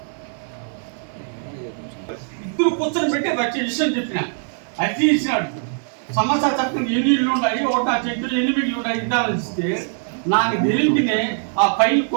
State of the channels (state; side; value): silent; left; digital silence